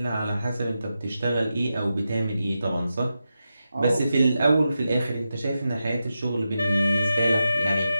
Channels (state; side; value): inverted; both; correlation -0.90